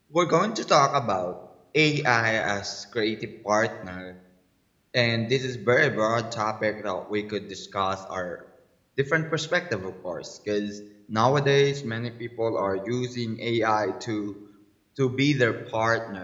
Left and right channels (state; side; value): identical; both; correlation 1.00